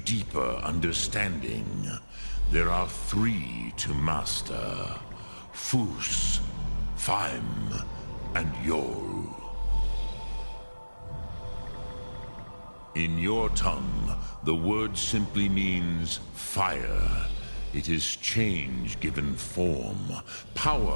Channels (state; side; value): inverted; both; correlation -1.00